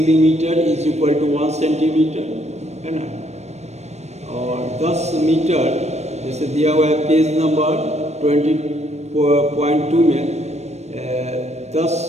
is equal to 1 centimetre, है ना। और 10 मीटर जैसे दिया हुआ है पेज नंबर 20.2 में 10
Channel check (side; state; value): left; late; 0.32 ms